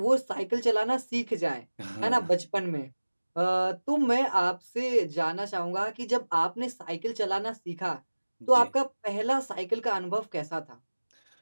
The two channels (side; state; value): both; inverted; correlation -1.00